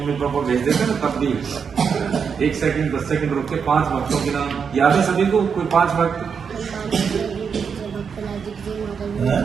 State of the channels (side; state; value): left; quieter; 6.4 dB